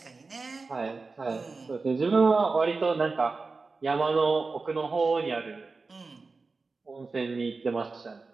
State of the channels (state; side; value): quieter; left; 4.0 dB